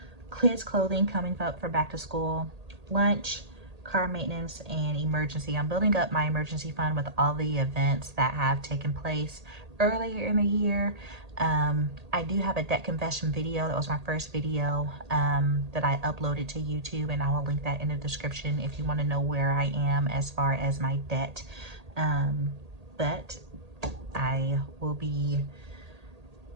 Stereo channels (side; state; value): left; late; 1.8 ms